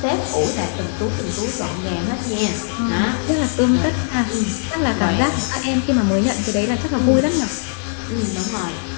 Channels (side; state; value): right; silent; digital silence